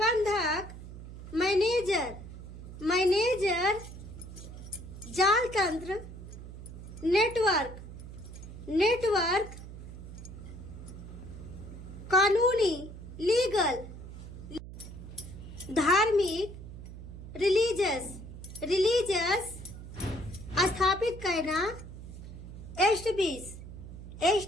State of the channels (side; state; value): right; noise; hum, 12 dB below the sound